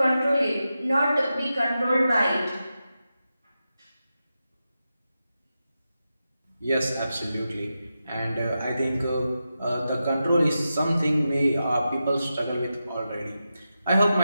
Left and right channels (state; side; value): inverted; both; correlation -0.90